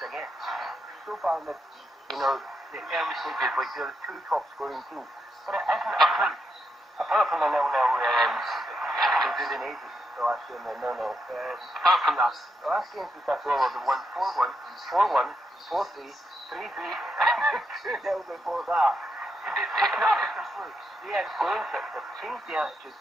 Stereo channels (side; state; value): both; normal; correlation 0.82